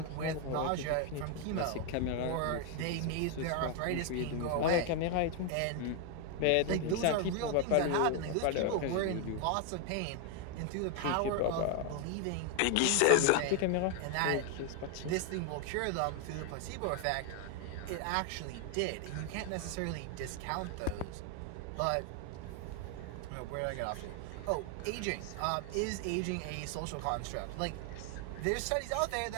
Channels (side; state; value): both; different; correlation 0.00